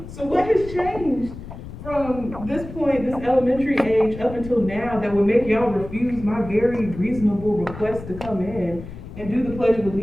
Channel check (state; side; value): noise; left; rumble, 12 dB below the sound